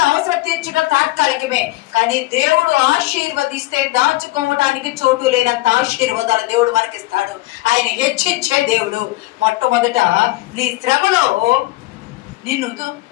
అవసరం తీర్చడం తాత్కాలికమే. కానీ దేవుడు ఆశీర్వదిస్తే దాచుకోవడానికి చోటు లేనంత ఆశీర్వాదాలు దేవుడు మనకిస్తాడు. ఆయన హెచ్చించే దేవుడు. మొట్టమొదట నీ శ్రమలో నిన్ను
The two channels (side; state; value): right; quieter; 19.9 dB